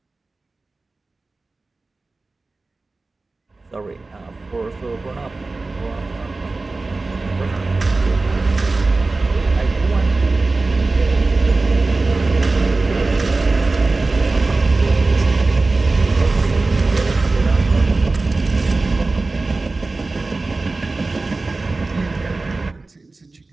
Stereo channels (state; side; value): quieter; left; 3.5 dB